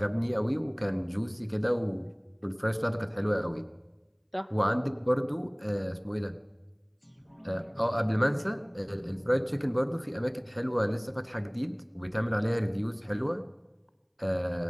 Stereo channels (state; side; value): identical; both; correlation 1.00